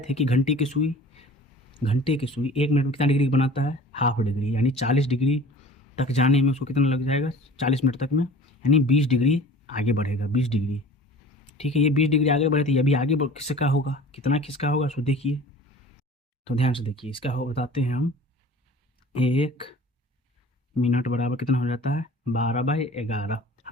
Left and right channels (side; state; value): both; normal; correlation 0.43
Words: कि घंटे की सुई 1 मिनट में कितना डिग्री बनाता है, हाफ डिग्री, यानी 40 डिग्री तक जाने में उसको कितना लग जाएगा, 40 मिनट तक में, यानी 20 डिग्री आगे बढ़ेगा, 20 डिग्री, ठीक है। ये 20 डिग्री आगे बढ़े तो ये भी आगे किसका होगा, कितना किसका होगा, सो देखिए। तो ध्यान से देखिए, इसका हो बताते हैं हम। 1 मिनट बराबर कितना हो जाता है, 12/11।